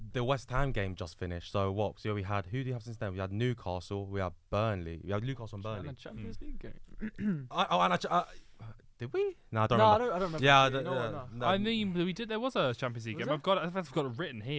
the West Ham game just finished. So what? So we had who do you have since then? We had Newcastle. We had Burnley. We had Newcastle and Burnley. And a Champions League game. Did we? No, I don't No, remember. I don't remember. Yeah, actually. You know what, no. I mean, we did. There was a Champions League Was game. there? I've got it written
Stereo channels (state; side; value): identical; both; correlation 1.00